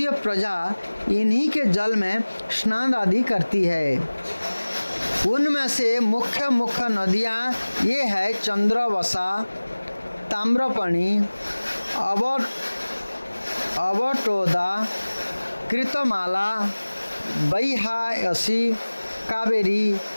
प्रजा इन्हीं के जल में स्नान आदि करती है। उनमें से मुख्य नदियाँ ये है चंद्रवसा, ताम्रपणि, अवटोदा, कृतमाला, बैहायसी, कावेरी,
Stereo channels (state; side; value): inverted; both; correlation -1.00